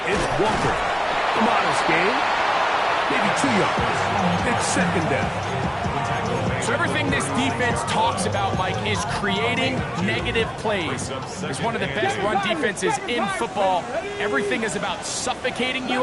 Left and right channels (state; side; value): identical; both; correlation 1.00